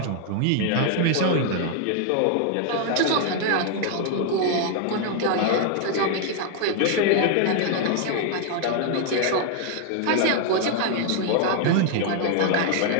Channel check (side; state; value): both; different; correlation 0.00